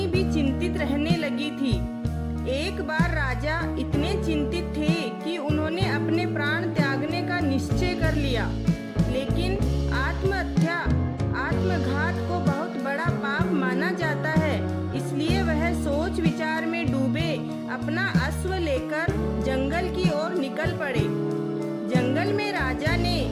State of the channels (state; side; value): identical; both; correlation 1.00